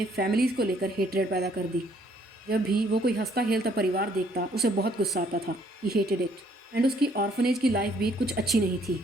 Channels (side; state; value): both; normal; correlation 0.65